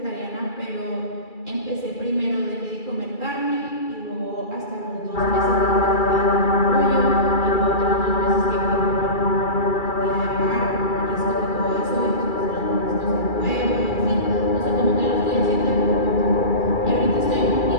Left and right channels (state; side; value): late; right; 2.3 ms